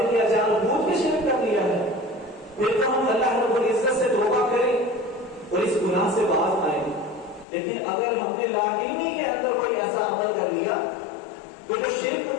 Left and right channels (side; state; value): right; drops out; at 7.5 s